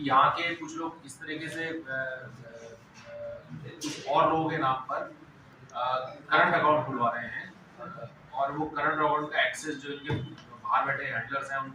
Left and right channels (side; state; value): both; identical; correlation 1.00